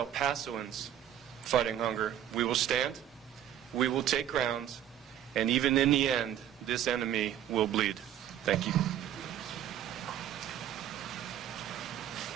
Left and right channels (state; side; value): quieter; left; 10.8 dB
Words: Pasoans fighting hunger, we will stand, we will take ground, and even in the end, this enemy will bleed. Thank you.